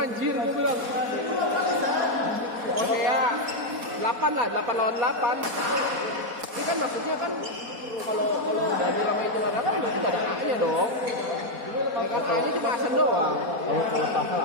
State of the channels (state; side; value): late; left; 4.1 ms